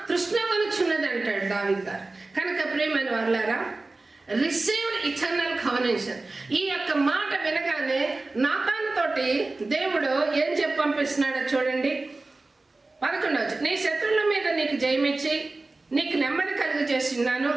తృష్ణగొనుచున్నది అంటాడు దావీదు గారు. కనుక ప్రియమైన వారలారా, రిసీవ్డ్ ఇటర్నల్ కవెనెంట్. ఈ యొక్క మాట వినగానే నాతాను తోటి దేవుడు ఏం చెప్పి పంపిస్తున్నాడో చూడండి. 11వ, నీ శత్రువుల మీద నీకు జయమిచ్చి నీకు నెమ్మది కలుగు చేస్తున్నాను.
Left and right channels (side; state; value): left; quieter; 3.3 dB